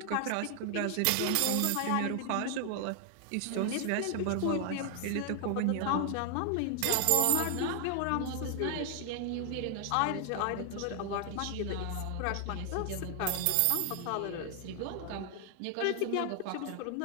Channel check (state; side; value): different; both; correlation 0.00